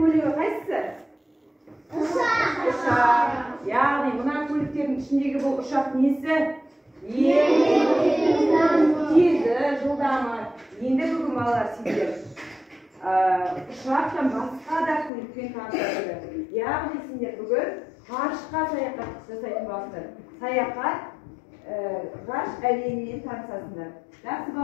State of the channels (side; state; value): right; drops out; at 15.1 s